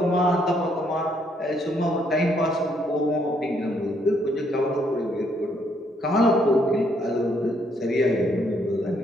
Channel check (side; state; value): both; normal; correlation 0.71